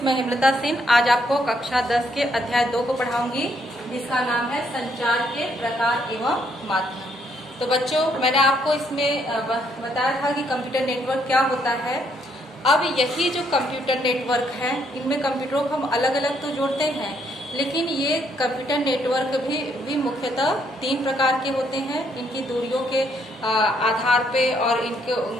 मैं हेमलता सिंह आज आपको कक्षा 10 के अध्याय 2 को पढ़ाऊंगी, जिसका नाम है संचार के प्रकार एवं माध्यम। तो बच्चों, मैंने आपको इसमें बताया था कि कंप्यूटर नेटवर्क क्या होता है। अब यही जो कंप्यूटर नेटवर्क है, इनमें कंप्यूटरों को हम अलग अलग तो जोड़ते हैं, लेकिन ये कंप्यूटर नेटवर्क भी मुख्यतः 3 प्रकार के होते हैं। इनकी दूरियों के आधार पे और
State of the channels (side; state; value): both; normal; correlation 0.71